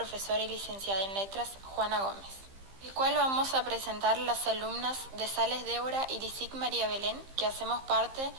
y licenciada en letras Juana Gómez, el cual vamos a presentar las alumnas de Sales Débora y Lisic María Belén, que hacemos parte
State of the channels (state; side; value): late; left; 15 ms